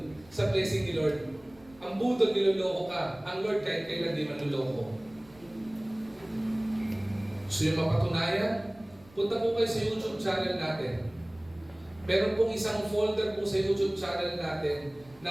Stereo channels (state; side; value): noise; right; rumble, 25 dB below the sound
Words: sa blessing ni Lord. Ang budol, niloloko ka. Ang Lord kahit kailan di manloloko. So yung mapatunayan, punta po kayo sa YouTube channel natin. Meron pong isang folder po sa YouTube channel natin